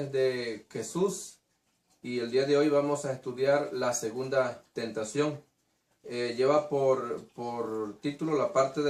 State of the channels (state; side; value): identical; both; correlation 1.00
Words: de Jesús y el día de hoy vamos a estudiar la segunda tentación. Lleva por título la parte